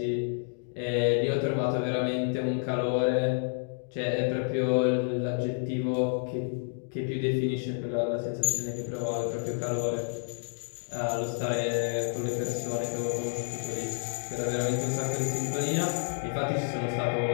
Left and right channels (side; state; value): right; silent; digital silence